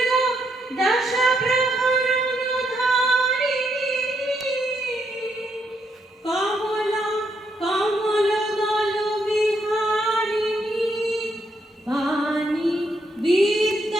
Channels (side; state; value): both; normal; correlation 0.77